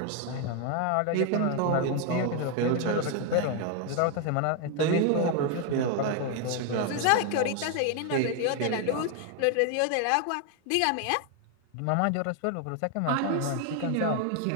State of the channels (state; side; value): different; both; correlation 0.01